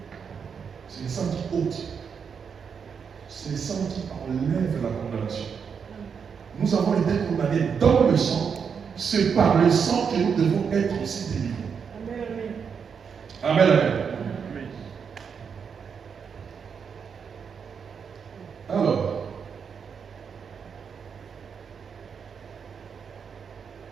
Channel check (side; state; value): left; quieter; 6.6 dB